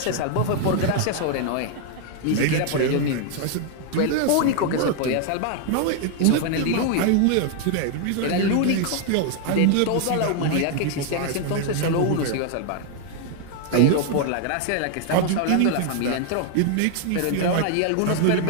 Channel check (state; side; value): different; both; correlation 0.00